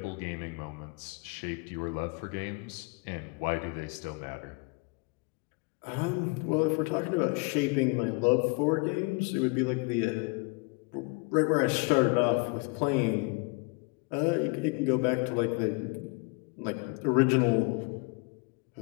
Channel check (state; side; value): quieter; right; 29.8 dB